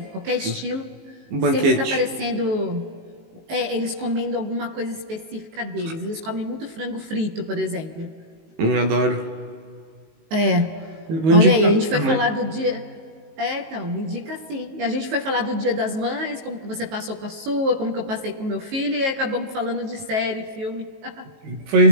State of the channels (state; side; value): late; left; 19 ms